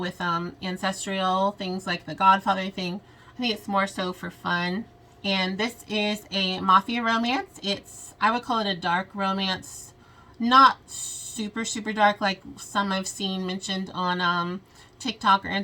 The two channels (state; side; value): identical; both; correlation 1.00